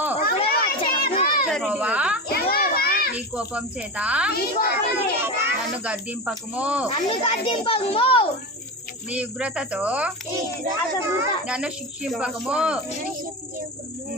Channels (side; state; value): both; normal; correlation 0.22